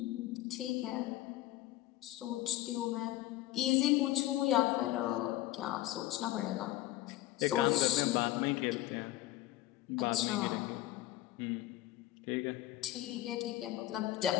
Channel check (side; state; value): right; quieter; 15.4 dB